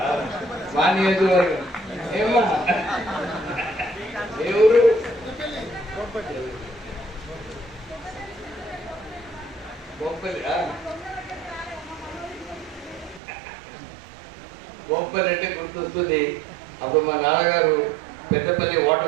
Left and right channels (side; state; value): left; drops out; at 13.2 s